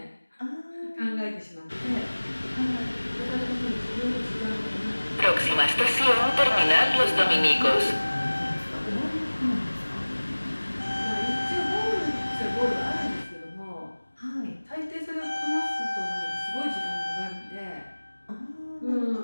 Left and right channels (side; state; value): both; inverted; correlation -1.00